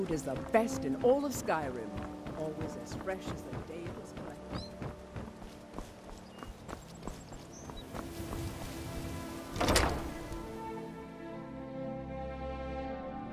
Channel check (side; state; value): both; identical; correlation 1.00